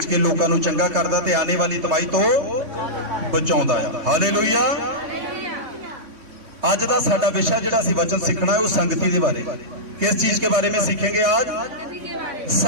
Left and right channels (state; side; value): late; left; 3.3 ms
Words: के लोगों नूं चंगा करदा ते आने वाली तबाही तो बचाउंदा है। हालेलुया। आज का साडा विषय जिहड़ा असीं वचन सीखना है वो संगति के बारे। किस चीज के बारे में सीखेंगे आज?